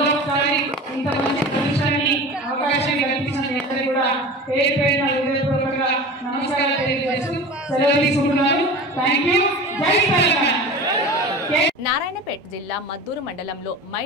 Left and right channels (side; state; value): both; normal; correlation 0.34